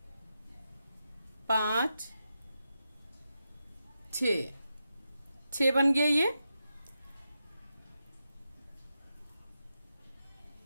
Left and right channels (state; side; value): inverted; both; correlation -0.87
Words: 5, 6, 6 बन गया ये।